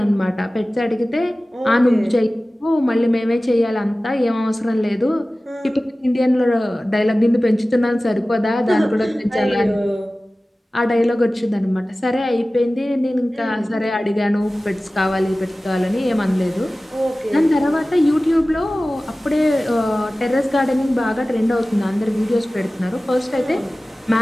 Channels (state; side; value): normal; both; correlation 0.97